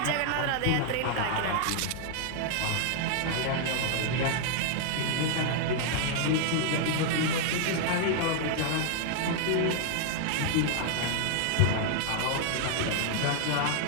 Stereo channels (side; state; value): both; different; correlation 0.00